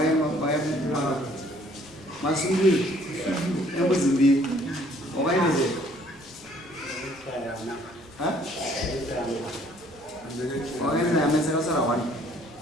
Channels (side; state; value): both; normal; correlation 0.60